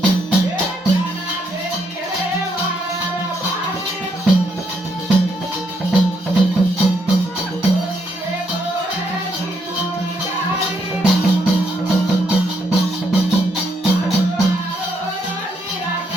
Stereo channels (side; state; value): both; normal; correlation 0.75